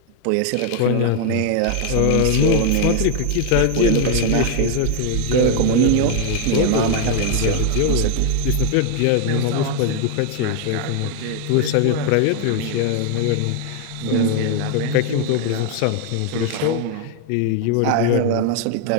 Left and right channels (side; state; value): both; different; correlation 0.00